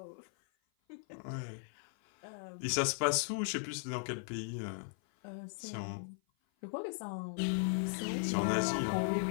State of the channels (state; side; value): silent; right; 53 dB below the other